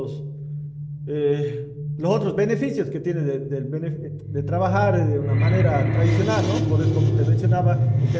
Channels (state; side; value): identical; both; correlation 1.00